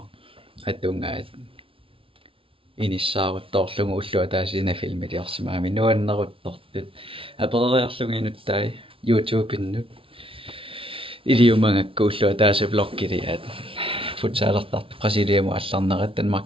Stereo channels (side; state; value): left; late; 0.26 ms